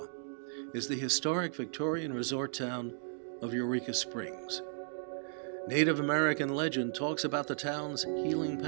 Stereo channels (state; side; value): silent; left; digital silence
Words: is the historic Victorian resort town of Eureka Springs. Native American legend talks about the town's healing